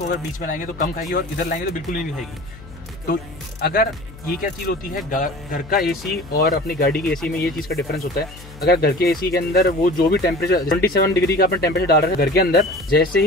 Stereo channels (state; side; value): noise; left; hum, 18 dB below the sound